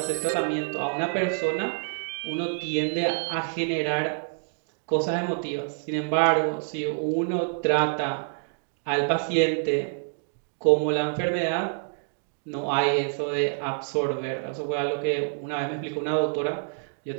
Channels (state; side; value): silent; left; digital silence